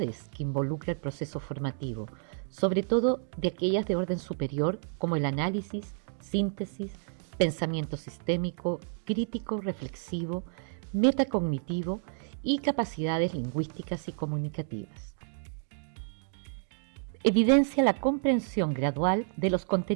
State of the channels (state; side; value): silent; left; digital silence